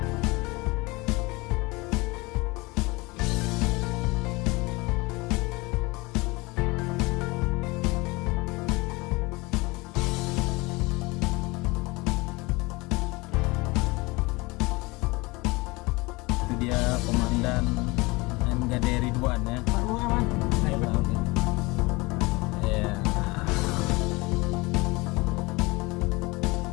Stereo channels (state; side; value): quieter; right; 24.0 dB